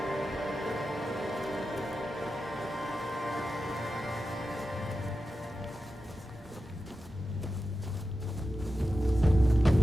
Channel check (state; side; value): normal; both; correlation 0.91